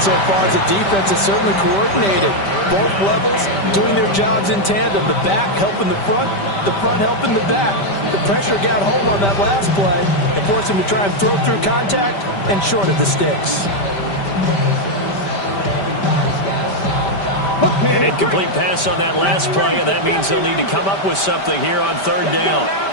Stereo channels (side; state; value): right; late; 5.1 ms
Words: far is the defense is certainly coordinated. Both levels doing their jobs in tandem. The back helping the front helping the back. The pressure got home on that last play and forced him to try and throw through contact and short of the sticks. An incomplete pass on that last play, and that means they'll need to come up with something here on 3rd down.